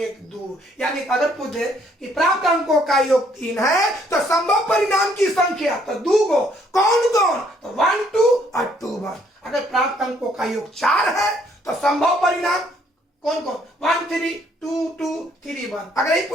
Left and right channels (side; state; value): both; normal; correlation 0.66